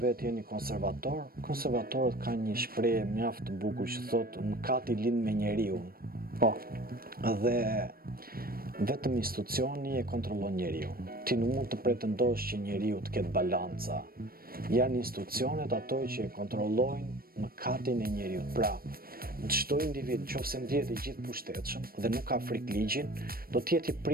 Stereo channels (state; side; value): late; left; 0.43 ms